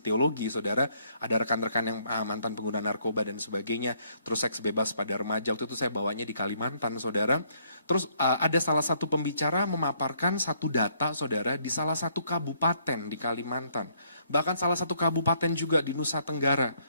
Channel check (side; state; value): both; inverted; correlation -0.68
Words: teologi, saudara. Ada rekan-rekan yang mantan pengguna narkoba dan sebagainya, terus seks bebas pada remaja, waktu itu saya bawanya di Kalimantan, saudara. Terus ada salah satu pembicara memaparkan satu data, saudara, di salah satu kabupaten di Kalimantan. Bahkan salah satu kabupaten juga di Nusa Tenggara